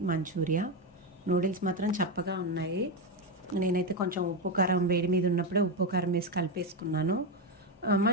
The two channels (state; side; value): normal; both; correlation 0.10